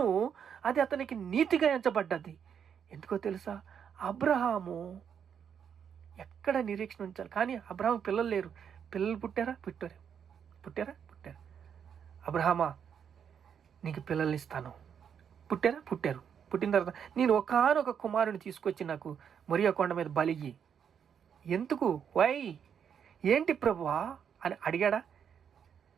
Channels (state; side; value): quieter; left; 7.8 dB